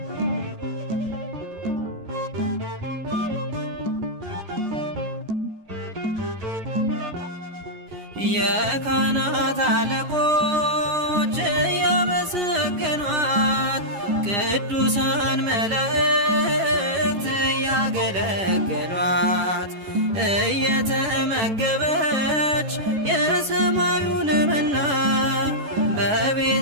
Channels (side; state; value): left; late; 11 ms